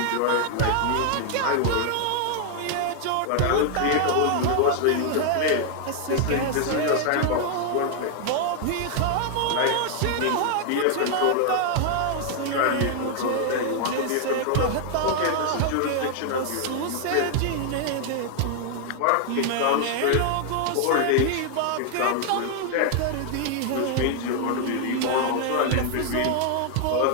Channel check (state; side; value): different; both; correlation 0.00